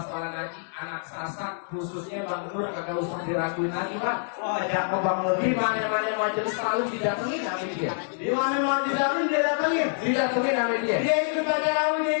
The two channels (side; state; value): right; silent; 61 dB below the other